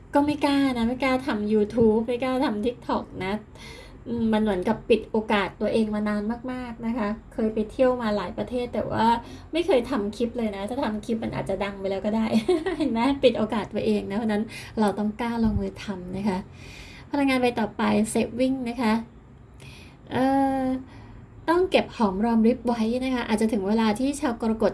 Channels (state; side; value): identical; both; correlation 1.00